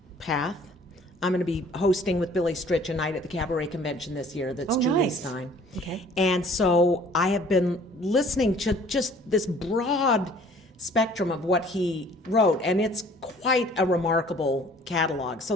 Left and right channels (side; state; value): both; normal; correlation 0.54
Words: path. I'm going to be hosting with Billy Stritch a night at the Cabaret Convention this year that's Oh, Julie nice. Stein. Okay. And so I have been listening to just this broad spectrum of what he wrote, and it's quite a remarkable catalog. So